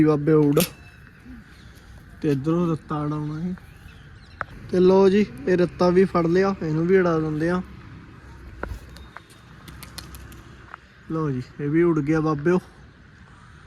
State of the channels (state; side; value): identical; both; correlation 1.00